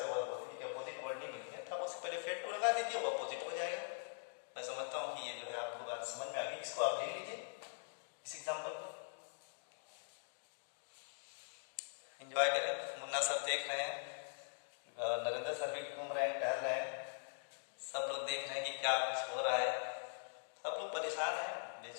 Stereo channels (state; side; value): silent; right; digital silence